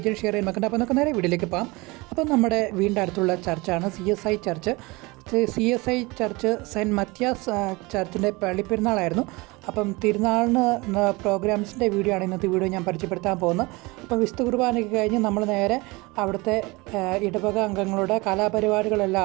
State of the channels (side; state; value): left; quieter; 23.9 dB